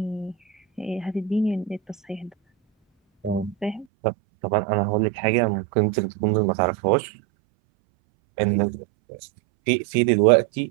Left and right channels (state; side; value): drops out; left; at 3.9 s